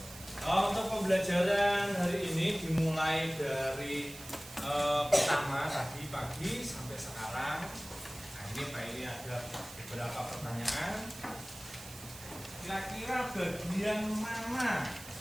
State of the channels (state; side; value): noise; right; hiss, 15 dB below the sound